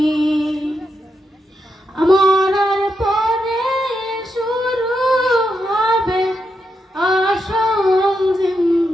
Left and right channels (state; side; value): normal; both; correlation 0.84